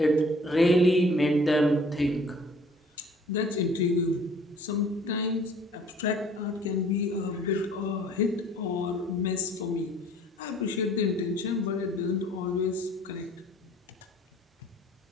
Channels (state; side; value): normal; both; correlation 0.54